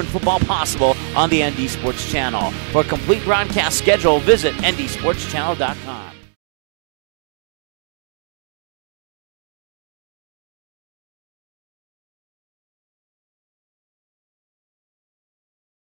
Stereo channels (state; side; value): silent; left; 64 dB below the other